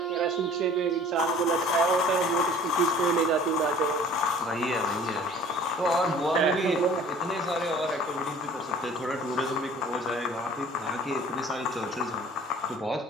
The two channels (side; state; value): both; normal; correlation 0.49